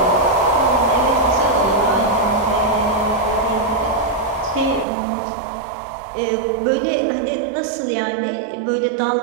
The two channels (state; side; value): drops out; left; at 4.9 s